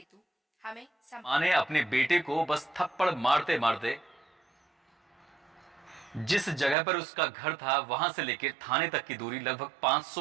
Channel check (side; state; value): left; drops out; at 6.8 s